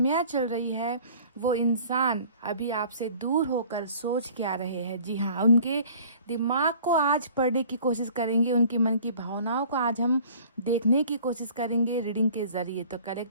चल रही है। वो इंसान अभी आपसे दूर होकर सोच क्या रहे हैं। जी हाँ, उनके दिमाग को आज पढ़ने की कोशिश करेंगे, उनकी मन की भावनाओं को आज हम देखने की कोशिश करेंगे रीडिंग के ज़रिए। तो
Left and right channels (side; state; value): both; inverted; correlation -0.50